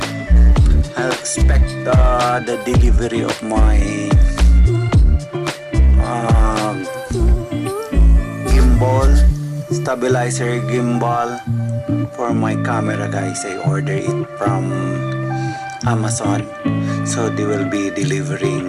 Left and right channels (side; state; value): both; identical; correlation 1.00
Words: I expect the delivery of my gimbal, stabilizer gimbal for my camera, guys. I ordered it from Amazon, so they will be